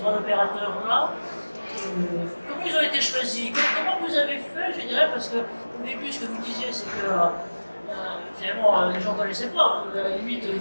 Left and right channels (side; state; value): both; inverted; correlation -1.00